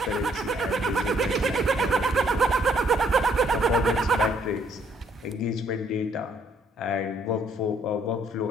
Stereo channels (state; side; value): normal; both; correlation 0.66